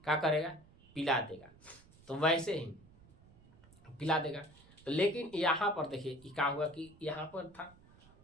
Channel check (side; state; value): right; noise; rumble, 25 dB below the sound